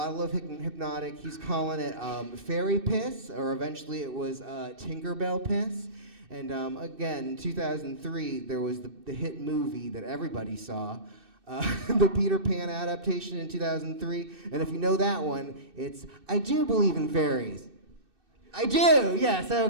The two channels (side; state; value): left; late; 2.6 ms